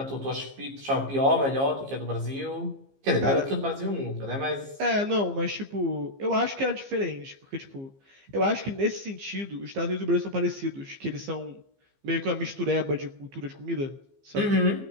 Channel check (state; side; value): late; left; 15 ms